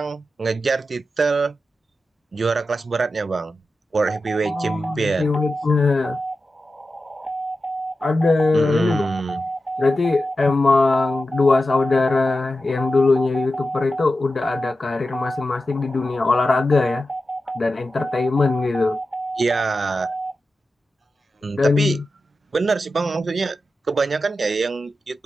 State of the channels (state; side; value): normal; both; correlation 0.92